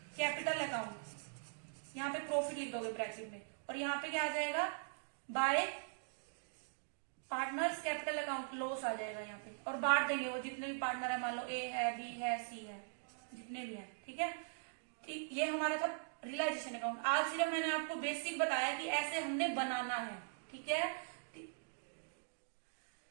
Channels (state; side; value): silent; left; digital silence